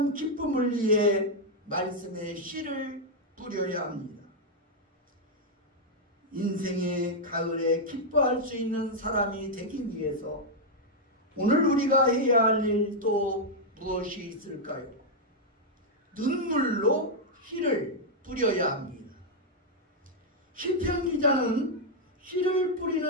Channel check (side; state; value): both; normal; correlation -0.03